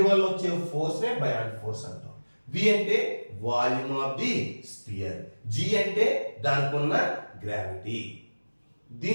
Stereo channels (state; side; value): inverted; both; correlation -1.00